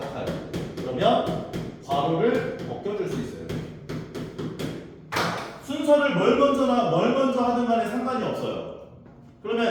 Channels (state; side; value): identical; both; correlation 1.00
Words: 그러면 괄호를 벗겨줄 수 있어요. 순서를 뭘 먼저 하든 간에 상관이 없어요.